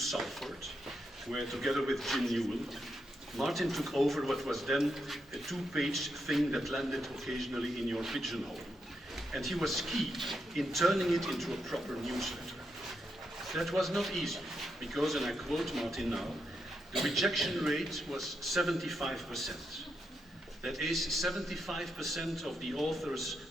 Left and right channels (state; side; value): normal; both; correlation 0.83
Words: where together with Jim Newell, Martin took over what was then a two-page thing that landed occasionally in your pigeonhole. And he was key in turning it into a proper newsletter. That was not easy, because, and I quote Martin now, the rejection rate was 75%. That is 75% of the authors